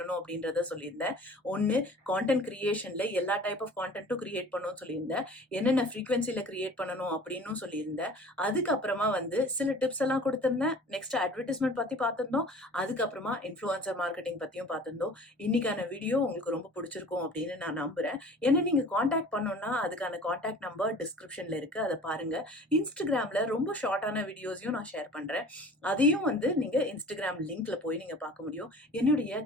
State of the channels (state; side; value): normal; both; correlation 0.44